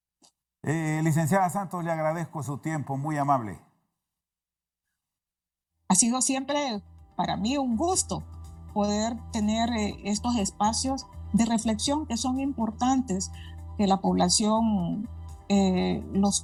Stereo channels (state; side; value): identical; both; correlation 1.00